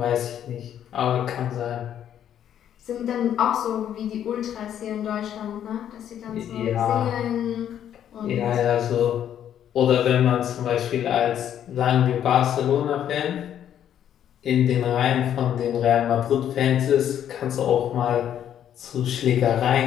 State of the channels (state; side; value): quieter; right; 10.0 dB